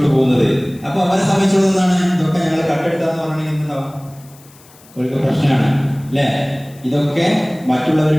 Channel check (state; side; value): noise; left; hiss, 26 dB below the sound